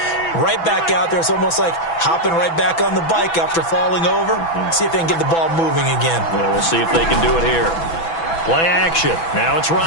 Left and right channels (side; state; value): right; late; 6.0 ms